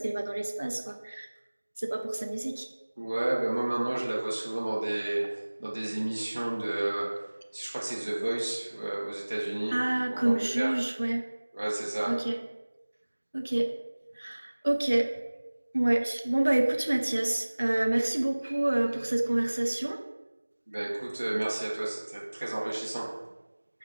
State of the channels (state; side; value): inverted; both; correlation -1.00